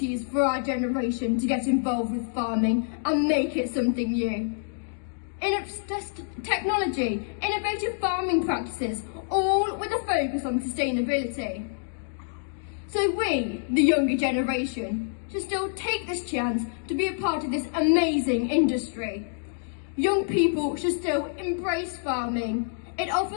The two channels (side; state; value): right; silent; digital silence